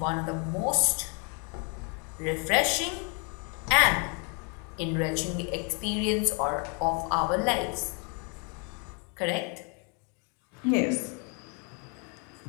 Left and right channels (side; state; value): right; quieter; 36.5 dB